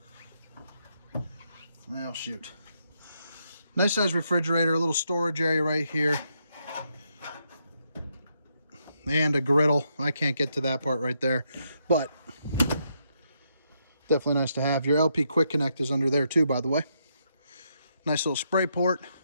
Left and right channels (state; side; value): inverted; both; correlation -0.78